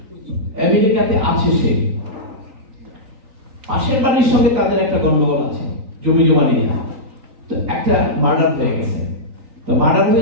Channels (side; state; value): left; late; 3.9 ms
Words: আমেরিকাতে আছে সে, পাশের বাড়ির সঙ্গে তাদের একটা গন্ডগোল আছে জমি জমা নিয়ে, তো একটা মার্ডার হয়ে গেছে। তো মার্ডার